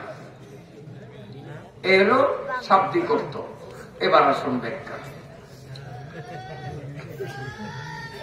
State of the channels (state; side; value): identical; both; correlation 1.00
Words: এরও শাব্দিক অর্থ। এবার আসুন ব্যাখ্যা।